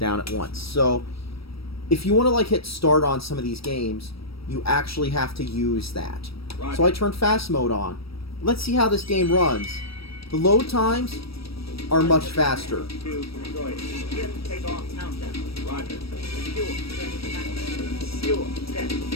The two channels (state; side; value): late; right; 0.76 ms